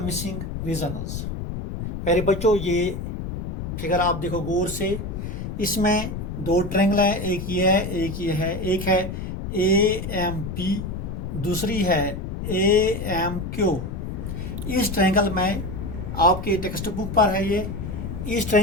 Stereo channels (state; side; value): noise; left; rumble, 6 dB below the sound